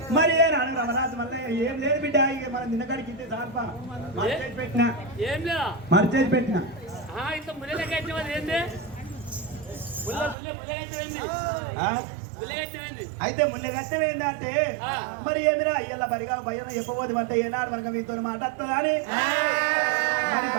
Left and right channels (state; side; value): drops out; left; at 10.4 s